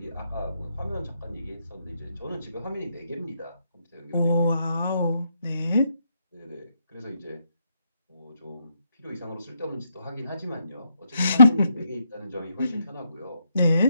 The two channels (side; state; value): both; inverted; correlation -0.77